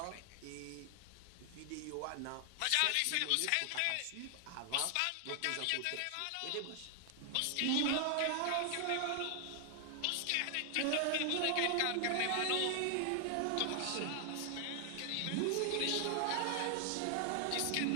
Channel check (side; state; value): both; different; correlation 0.00